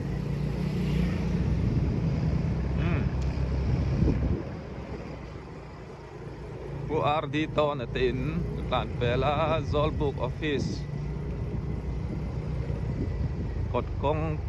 bu RD to na tin tan pela Zolbook office kod kong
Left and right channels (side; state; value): both; identical; correlation 1.00